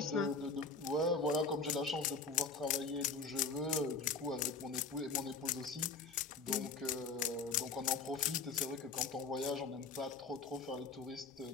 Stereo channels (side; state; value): right; quieter; 4.3 dB